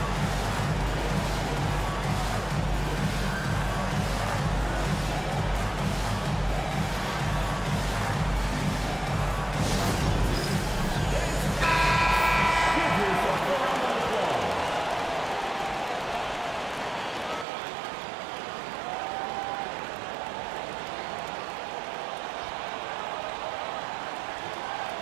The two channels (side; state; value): left; drops out; at 17.4 s